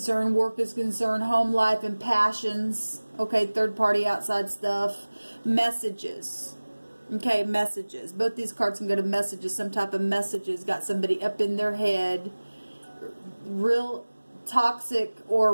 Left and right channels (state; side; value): inverted; both; correlation -1.00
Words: work is concerned, home life and passions. Okay, third party outside stuff. Messages. Okay, messages. Both these cards can go to messages. Some type of messages. Got somebody up in their head. Real toxic or